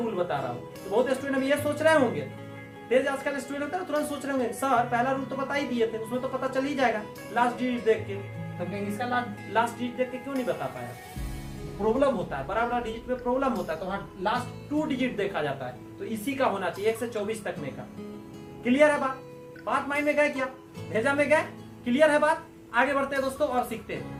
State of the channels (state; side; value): identical; both; correlation 1.00